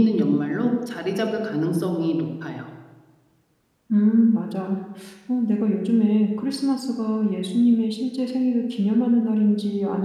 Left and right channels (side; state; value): both; identical; correlation 1.00